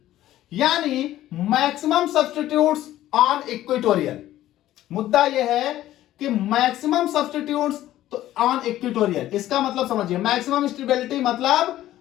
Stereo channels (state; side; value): quieter; right; 13.8 dB